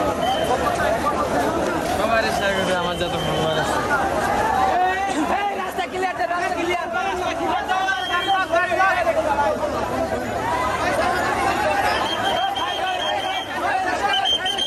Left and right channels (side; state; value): both; identical; correlation 1.00